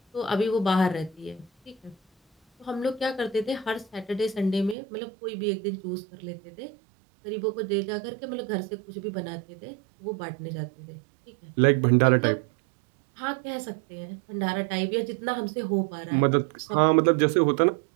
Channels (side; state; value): left; drops out; at 4.8 s